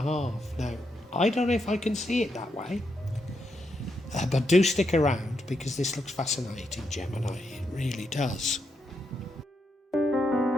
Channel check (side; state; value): both; normal; correlation 0.81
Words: Now, I don't know if I can see it that way. But do stick around, because this looks fascinating, Gemini. It really does.